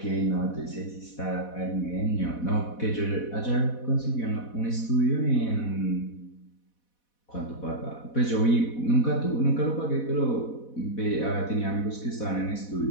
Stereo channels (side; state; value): right; late; 4.1 ms